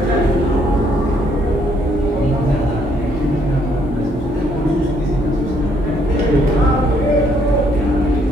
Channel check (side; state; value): both; normal; correlation 0.69